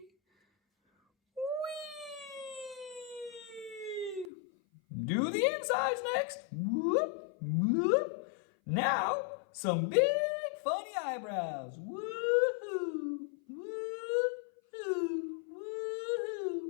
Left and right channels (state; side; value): drops out; right; at 4.3 s